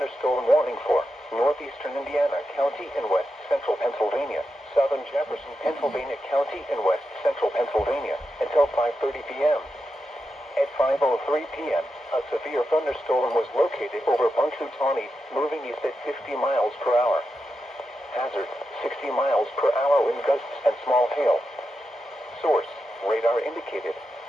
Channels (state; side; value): normal; both; correlation 0.88